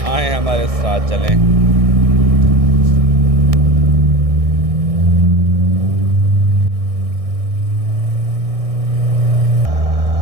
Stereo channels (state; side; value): late; left; 1.6 ms